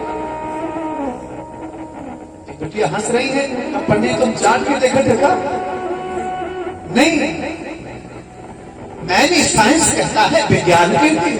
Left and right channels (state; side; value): identical; both; correlation 1.00